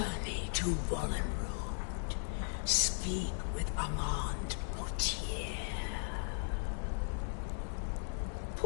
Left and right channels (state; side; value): silent; right; digital silence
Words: to Wallen Road. Speak with Armand Mortier.